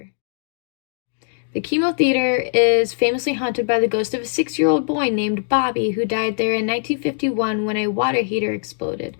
The Chemo Theater is famously haunted by the ghost of a 6-year-old boy named Bobby who died there in 1951 when a water heater exploded.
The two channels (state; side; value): silent; right; digital silence